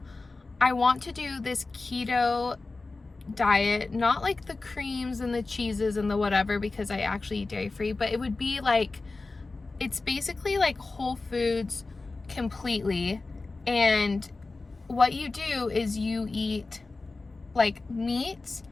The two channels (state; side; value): quieter; right; 3.6 dB